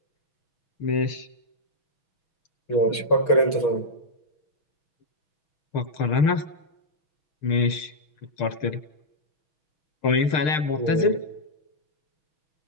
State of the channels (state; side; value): late; right; 6.6 ms